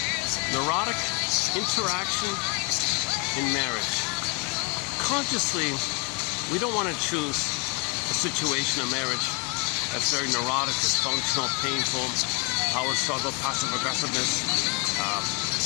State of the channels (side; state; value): right; quieter; 33.2 dB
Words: Neurotic Interaction in Marriage. Consciously, we don't want to choose a situation of marriage that's very neurotic, dysfunctional, painful, power struggle, passive aggressiveness,